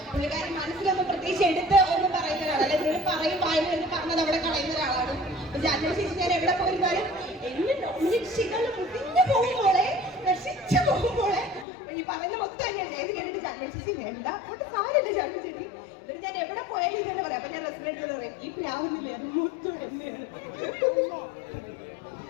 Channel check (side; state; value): right; drops out; at 11.7 s